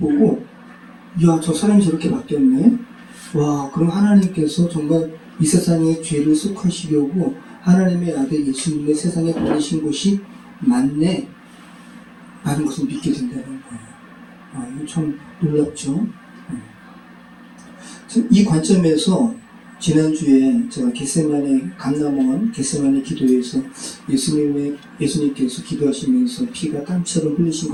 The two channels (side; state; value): both; identical; correlation 1.00